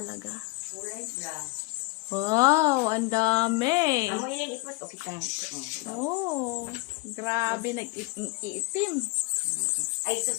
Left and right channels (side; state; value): right; quieter; 25.5 dB